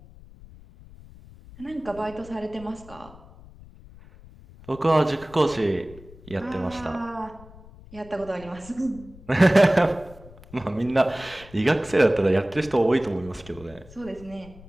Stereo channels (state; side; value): noise; left; rumble, 20 dB below the sound